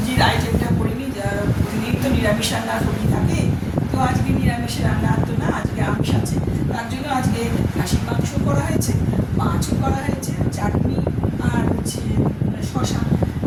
আইটেমটা করিনি, প্রতিদিন তো নিরামিষ রান্না করি থাকে, তো আজকে নিরামিষের রান্না তো না, আজকে আমিষ আছে। তার জন্য আজকে খাসির মাংস করা হয়েছে, মাছও করা হয়েছে, চাটনি আর হচ্ছে শশা,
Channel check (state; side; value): identical; both; correlation 1.00